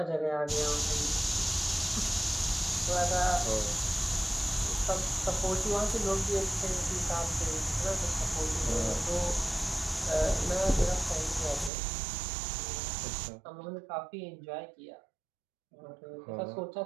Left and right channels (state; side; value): drops out; left; at 11.7 s